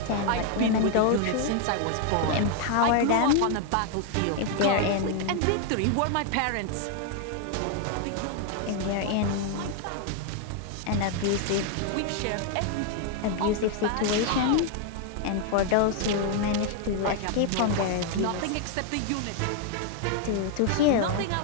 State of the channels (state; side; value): different; both; correlation 0.00